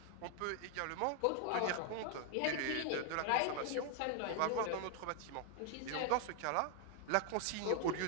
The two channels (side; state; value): both; different; correlation 0.00